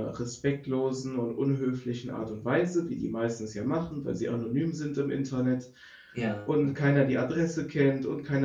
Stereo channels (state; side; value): identical; both; correlation 1.00